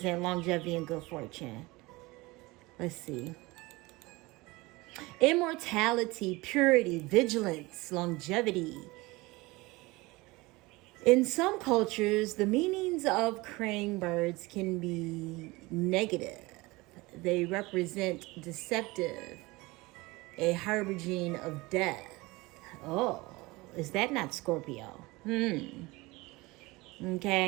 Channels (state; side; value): quieter; left; 22.4 dB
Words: longevity and good fortune. Let's see. Immortality, purity, vigilance, longevity. In some cultures, the meanings of crane birds can be negative. They represent deceptive, a harbinging of death. Oh, is that not Scorpio?